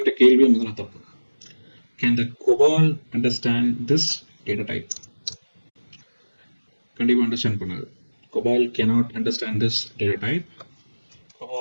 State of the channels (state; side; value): inverted; both; correlation -1.00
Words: கேள்வியே முதல்ல தப்பு. கேன் த COBOL understand this data type? கண்டிப்பாக அண்டர்ஸ்டாண்ட் பண்ணாது. COBOL cannot understand this data type.